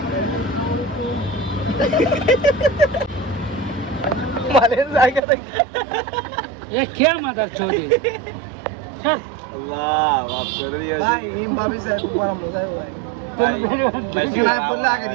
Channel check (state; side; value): drops out; left; at 5.2 s